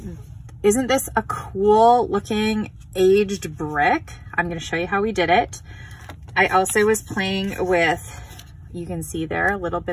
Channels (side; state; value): both; identical; correlation 1.00